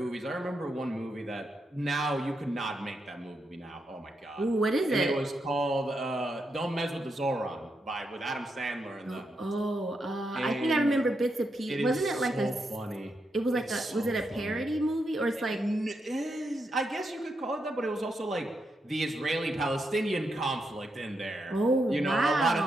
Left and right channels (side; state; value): both; normal; correlation 0.83